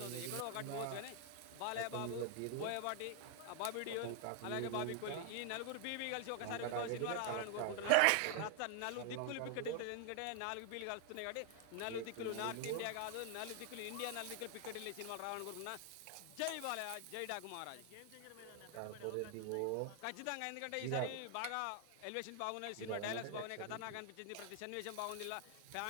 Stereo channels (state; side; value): different; both; correlation 0.00